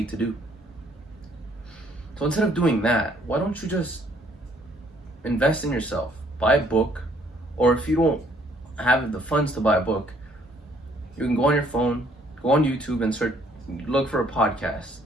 to do. So instead of doing that, why don't you just invest in yourself? Buy a book, or if you don't have the funds to buy a book, you can go on your phone, go on YouTube and look for a podcast.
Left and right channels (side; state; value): both; normal; correlation 0.64